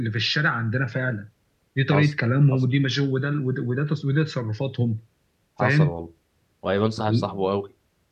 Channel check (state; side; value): identical; both; correlation 1.00